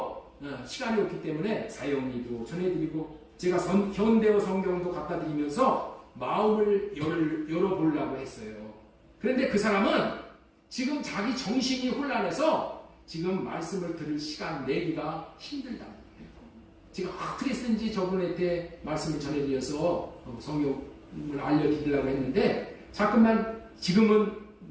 시간이 없기 때문에 사형리도 전해드리고 제가 현대어 성경도 갖다 드리면서 마음을 열어보려고 했어요. 그런데 그 사람은 지금 자기 정신이 혼란해서 지금 말씀을 들을 시간 내기가 힘들다는 거예요. 제가 어떻게 쓰는지 저분한테 말씀을 전해드려서 성경을 알려드리려고 했는데 자꾸만 지금은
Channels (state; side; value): identical; both; correlation 1.00